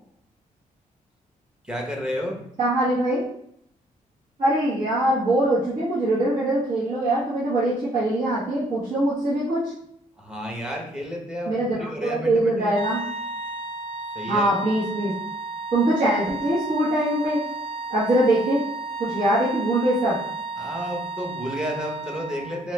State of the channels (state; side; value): normal; both; correlation 0.63